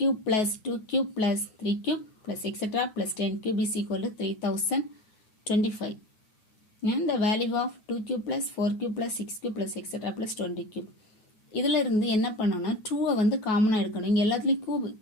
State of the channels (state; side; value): late; right; 9.2 ms